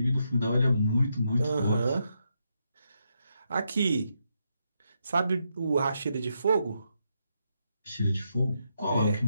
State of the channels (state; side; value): inverted; both; correlation -0.81